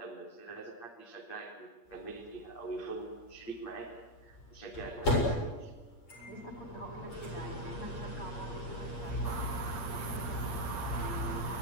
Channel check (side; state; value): right; late; 8.5 ms